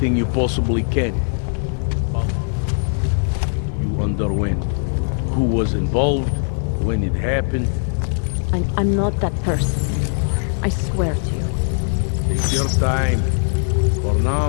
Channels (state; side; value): silent; right; 66 dB below the other